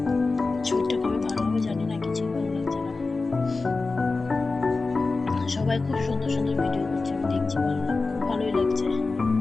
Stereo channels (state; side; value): quieter; right; 3.8 dB